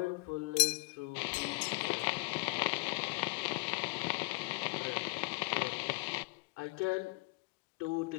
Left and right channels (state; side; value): quieter; right; 28.1 dB